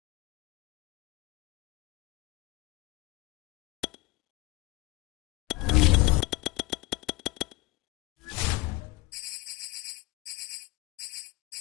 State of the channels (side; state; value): right; quieter; 21.4 dB